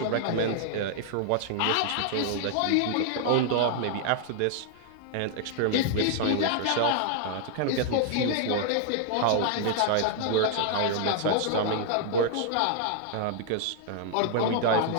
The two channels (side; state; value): both; different; correlation 0.00